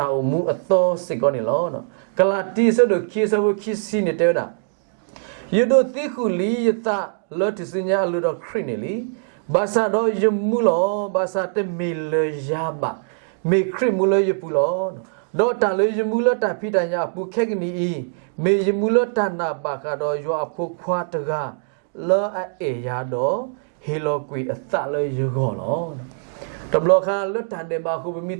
ောင်မူအသောစစ်ကောနေလောနော်ကလာတီဆိုတော့ခိဆဘခိစီနေတဲ့တာယဒိုတိခုလီယတာလောတစညာလူတော့ခရစ်နေလီဘာသာတော့ယမူလောဘာသာတမီလယာဘာမေခရမူလယပူလောတော့တန်လေယမူလတဖိတညာပူခက်ကနီမေယမူလတနာဘာကတော့ယောအဖို့ခွာတကလောအေယာတော့ဟီလိုကွီအသလေယဂောလောတဘလခါလွတ်တန်တယ်ဘာခုမီ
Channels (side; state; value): left; silent; digital silence